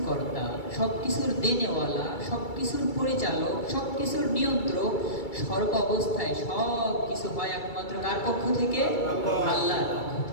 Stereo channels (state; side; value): late; right; 2.3 ms